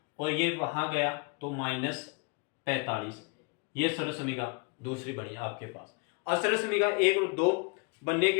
और ये वहां गया तो माइनस 45, ये सर्वसमीका दूसरी बनी आपके पास। और सर्वसमीका 1 और 2 बनने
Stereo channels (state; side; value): quieter; right; 32.0 dB